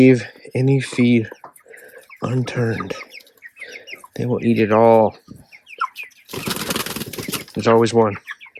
any feed unturned. They will eat it all. There's always one.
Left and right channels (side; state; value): both; identical; correlation 1.00